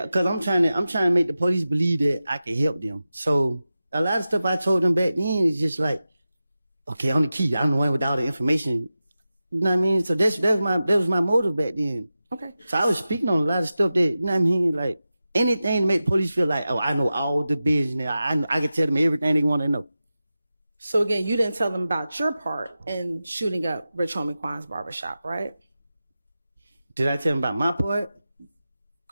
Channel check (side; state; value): both; inverted; correlation -0.93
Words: because I'm trying to make the police believe that I can help them. So a lot of stuff I told them back then is just like, okay, I'm the key. I'm the one with all the information. You know what I mean? So that was my motive back then. Okay. So I was speaking on a lot of stuff that, you know what I mean? Like anything to make the police feel like, oh, I know all the business. I can tell them everything they want to know. So again, you didn't tell them about your part in shooting up Rich Homie Quan's barbershop, right? Did I tell them about my part?